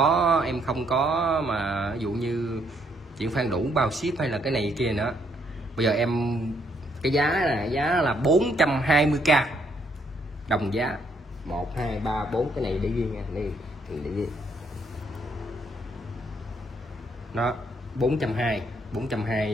có mà ví dụ như chuyển khoản đủ bao ship hay là cái này kia nữa. Bây giờ em cái giá là 420k đồng giá 1 2 3 4 cái này để ghi nha, đây để ghi. Nó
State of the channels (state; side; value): normal; both; correlation 0.71